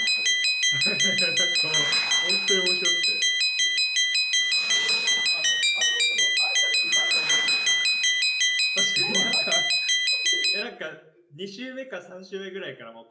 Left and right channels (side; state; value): both; identical; correlation 1.00